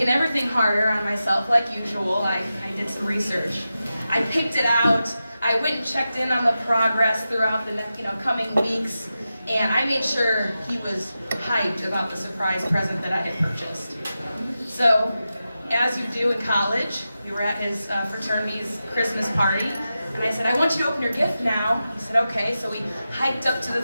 everything harder on myself like usual, I did some research. I picked it out. I went and checked in on the progress throughout the coming weeks, and I made sure he was hyped about the surprise present that I had purchased. So, as you do in college, we were at his fraternity's Christmas party, and I said, I want you to open your gift now. He said, okay. So we hiked up to the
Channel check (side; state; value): both; inverted; correlation -0.92